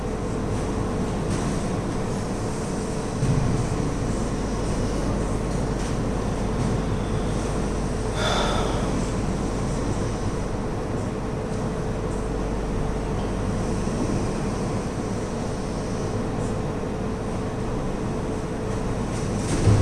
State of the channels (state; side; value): identical; both; correlation 1.00